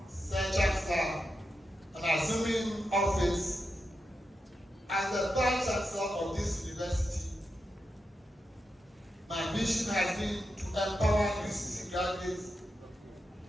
Sir Chancellor, on assuming office as the Vice Chancellor of this university, my mission has been to empower UCC graduates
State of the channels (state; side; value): normal; both; correlation 0.87